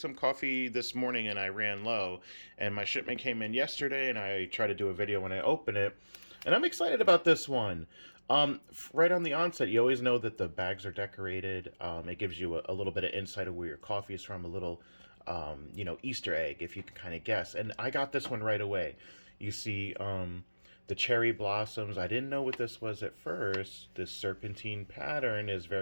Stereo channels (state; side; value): inverted; both; correlation -1.00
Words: coffee this morning and I ran low. And my shipment came in yesterday and I try to do a video when I open it. And I'm excited about this one. Right on the onset, you always know that the bags are decorated. It gives you a little bit of insight of where your coffee is from, a little, Easter egg, if you can kind of guess. And I got this one right away. You see, the cherry blossoms. I didn't know what this was at first. This serpentine pattern is